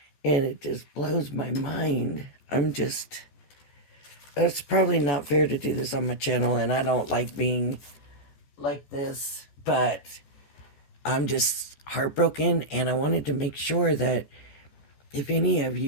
and it just blows my mind. It's probably not fair to do this on my channel, and I don't like being like this, but I'm just heartbroken, and I wanted to make sure that if any of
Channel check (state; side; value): late; right; 14 ms